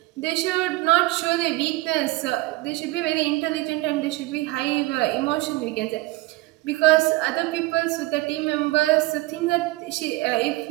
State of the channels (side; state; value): left; quieter; 20.0 dB